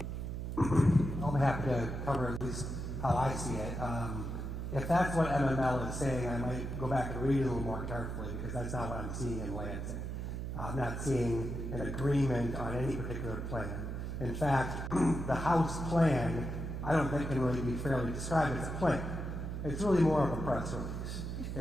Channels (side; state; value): right; noise; hum, 4 dB below the sound